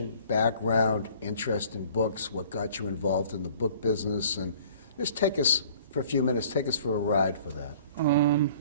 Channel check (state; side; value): inverted; both; correlation -0.52